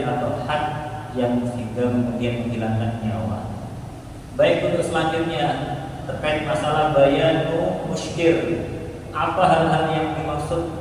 atau had yang sehingga kemudian menghilangkan nyawa. Baik, untuk selanjutnya terkait masalah bayanu muskir. Apa hal-hal yang dimaksud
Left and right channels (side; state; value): both; identical; correlation 1.00